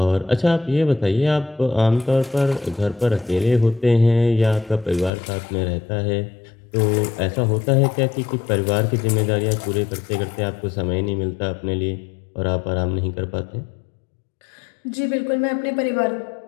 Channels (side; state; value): right; drops out; at 5.1 s